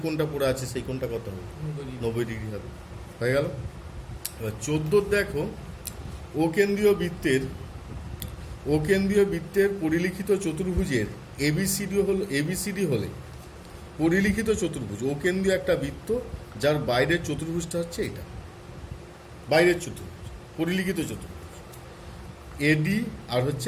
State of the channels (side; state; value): both; identical; correlation 1.00